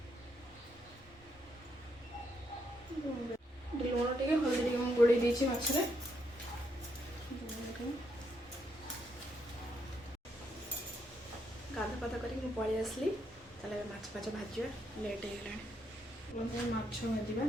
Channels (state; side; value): normal; both; correlation 0.77